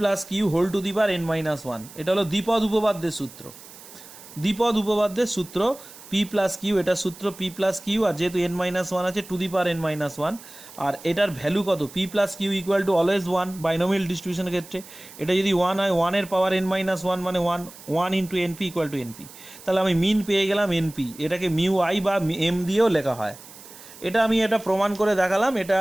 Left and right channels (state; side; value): noise; right; hiss, 18 dB below the sound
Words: Q whole to the power n-1। এটা হলো দ্বিপদ উপপাদ্যের সূত্র, দ্বিপদ উপপাদ্যের সূত্র পি প্লাস কিউ, এটা সূত্র পি প্লাস কিউ, আর যেহেতু n-1 আছে টু দি পাওয়ার n-1, আর এটার ভ্যালু কত, P plus Q equal to always 1 binomial ডিস্ট্রিবিউশনের ক্ষেত্রে। এটা যদি 1 হয় 1 এর পাওয়ার n-1 মানে 1 into NP equal to NP. তাহলে আমি মিন পেয়ে গেলাম এনপি, এটাকে মিউ আই বা এম দিয়েও লেখা হয়। এটা আমি এটা প্রমাণ করে দেখালাম, এটা